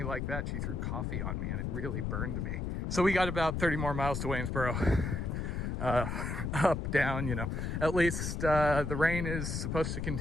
like that, she threw coffee on me and it really burned me. So we got about 30 more miles to Waynesboro. Up, down, At least the rain is supposed to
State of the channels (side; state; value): left; noise; rumble, 2 dB below the sound